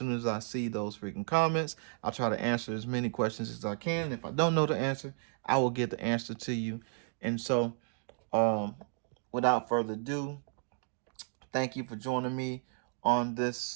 as I see those freaking comments. I'll try to answer as many questions as I can. If I don't know the answer, I will get the answer to you. And so, um, without further ado, thank you for joining me on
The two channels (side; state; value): left; silent; 55 dB below the other